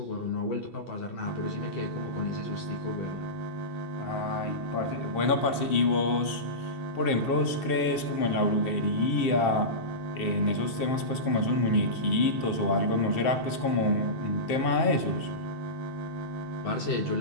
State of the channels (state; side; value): late; right; 2.7 ms